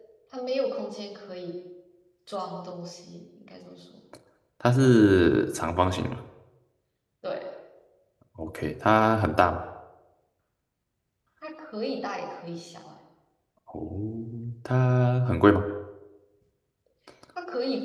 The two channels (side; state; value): both; identical; correlation 1.00